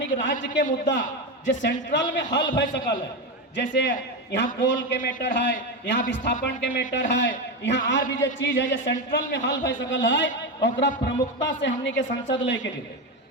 के राज्य के मुद्दा जो सेंट्रल में हल भय सकल है, जैसे यहाँ कोल के मैटर है, यहाँ विस्थापन के मैटर है, यहाँ और भी जो चीज है जो सेंट्रल में हल भय सकल है, और प्रमुखता से हमने के संसद लेके जीते।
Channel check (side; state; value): both; normal; correlation 0.15